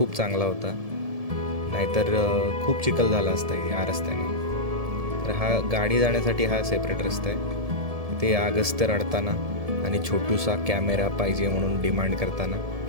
चांगला होता, नाहीतर खूप चिखल झाला असता या रस्त्याने. तर हा गाडी जाण्यासाठी हा सेपरेट रस्ता आहे. ते अगस्त्य रडताना आणि छोटूसा कॅमेरा पाहिजे म्हणून डिमांड करताना,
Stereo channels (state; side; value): late; left; 1.7 ms